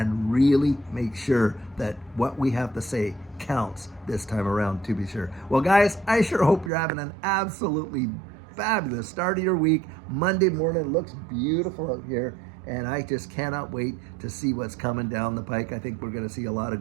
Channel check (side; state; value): left; drops out; at 6.7 s